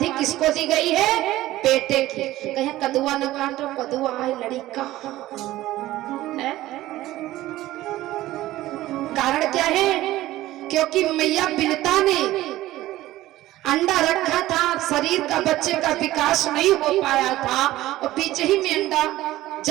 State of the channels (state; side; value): quieter; left; 15.9 dB